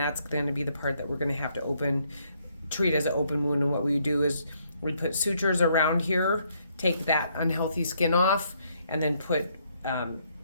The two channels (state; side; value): inverted; both; correlation -0.71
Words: going to be the part that we're going to have to treat as an open wound. And what we do is we put sutures around here, take that unhealthy skin off, and then put